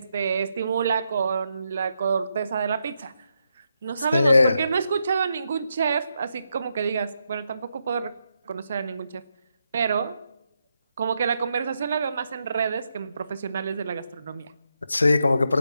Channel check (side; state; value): both; inverted; correlation -0.82